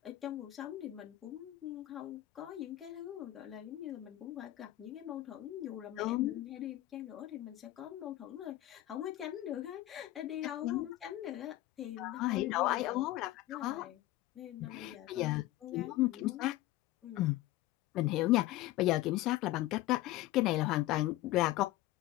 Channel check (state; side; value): quieter; right; 16.1 dB